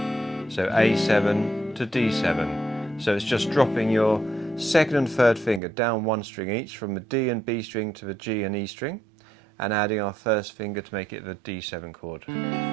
So A7 to D7. So it's just dropping your second and third finger down one string each, from the D and B string to the G and E string, and adding our first finger to make it the D7 chord.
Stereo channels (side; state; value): left; drops out; at 5.6 s